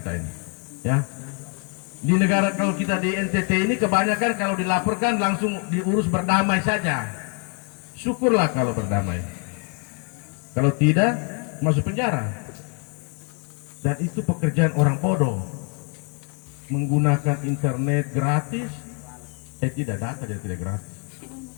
ini, ya. Di negara kalau kita di NTT ini kebanyakan kalau dilaporkan langsung diurus berdamai saja. Syukurlah kalau berdamai. Kalau tidak masuk penjara. Dan itu pekerjaan orang bodoh. Menggunakan internet gratis, tidak data dia tidak gratis.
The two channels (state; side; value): quieter; right; 36.3 dB